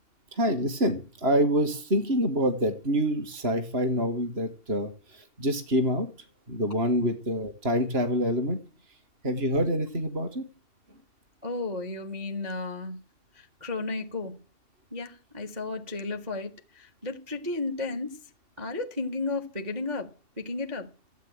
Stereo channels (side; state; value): left; late; 2.9 ms